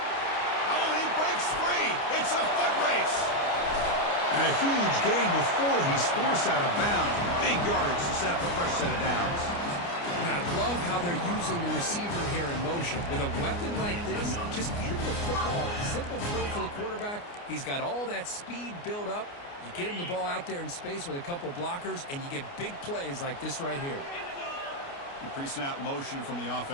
Oh, and he breaks free. It's a foot race. And a huge gain before he's forced out of bounds. Big yardage to set up a fresh set of downs. And I love how they're using the receiver here in motion. With a weapon like this, just get him the football. Simple throw for the quarterback. He's got all that speed built up. You get him the ball out there in space with a couple blockers, and you get big plays like this right here. Pre-snap motion from the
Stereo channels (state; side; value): late; right; 29 ms